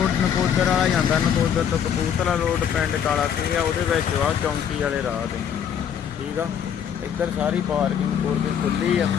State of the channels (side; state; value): right; quieter; 8.4 dB